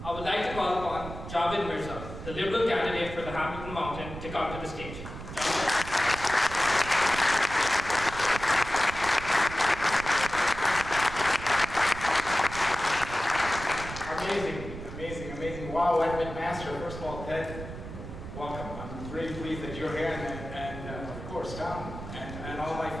I would like to call upon Javid Mirza, the Liberal candidate for the Hamilton Mountain, to come to the stage. Amazing. Wow, at McMaster, first of all, Ted, welcome. I'm really pleased that you're here, and of course, Tom, and all my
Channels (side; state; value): right; noise; rumble, 10 dB below the sound